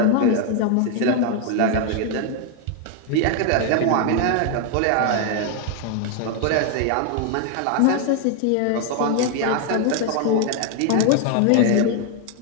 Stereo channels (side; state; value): both; different; correlation 0.00